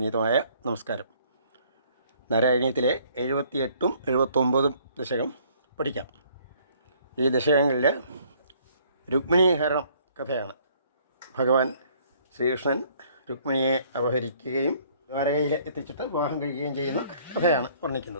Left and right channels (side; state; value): both; inverted; correlation -0.61